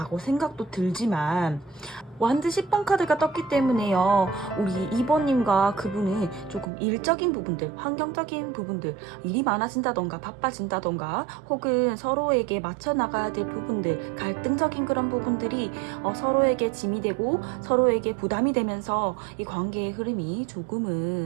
생각도 들지만, 완드 10번 카드가 떴기 때문에요, 우리 2번님과 그분은 조금 일적인 부분들, 환경적인 부분들, 일이 많아진다던가 바빠진다던가 혹은 서로에게 맞춰 나가야 될 부분들, 갈등적인 그런 부분들이 서로에게 짐이 되고 서로에게 부담이 되면서 이 관계의 흐름이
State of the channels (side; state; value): left; drops out; at 6.7 s